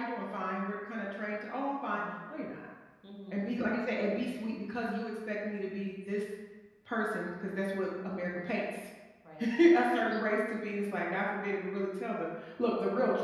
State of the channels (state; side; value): identical; both; correlation 1.00